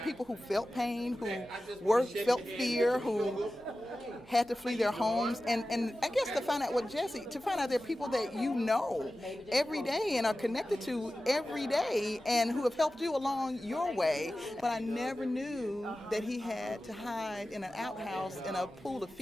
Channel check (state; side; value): normal; both; correlation 0.94